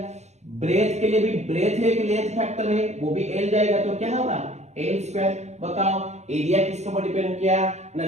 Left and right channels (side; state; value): left; late; 0.33 ms